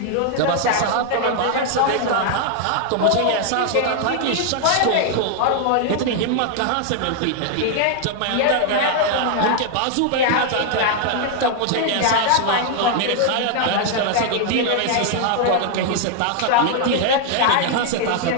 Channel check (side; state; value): both; different; correlation 0.00